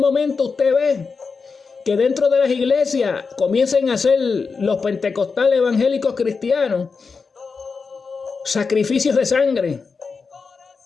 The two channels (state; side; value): quieter; right; 4.9 dB